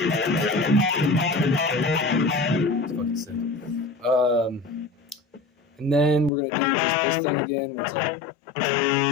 it's fucking sick. And then we're gonna do just this thing again where it's like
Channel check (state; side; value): drops out; right; at 6.3 s